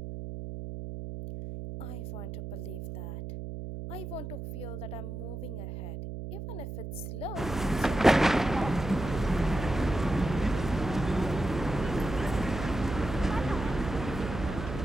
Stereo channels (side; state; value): right; noise; hum, 7 dB below the sound